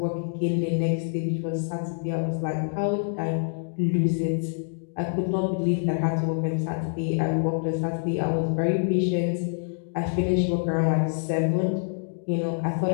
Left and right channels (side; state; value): right; silent; digital silence